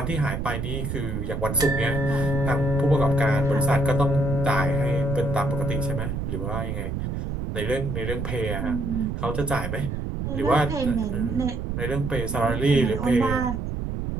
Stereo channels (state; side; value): noise; right; rumble, 3 dB below the sound